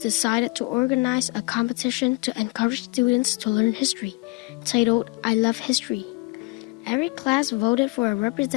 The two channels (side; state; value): right; quieter; 26.9 dB